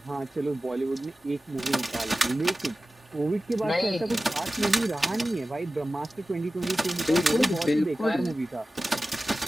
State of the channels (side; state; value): both; normal; correlation 0.95